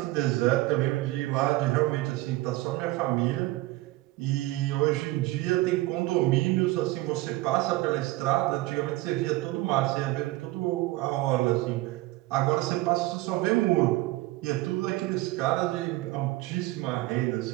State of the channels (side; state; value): left; quieter; 18.9 dB